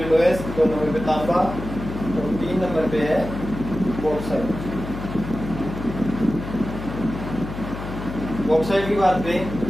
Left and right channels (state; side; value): noise; left; hum, 8 dB below the sound